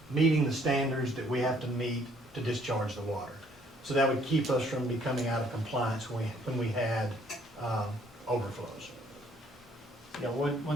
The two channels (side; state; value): both; normal; correlation 0.63